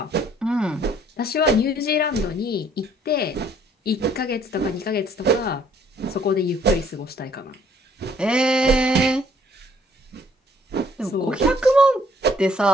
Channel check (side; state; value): both; normal; correlation 0.62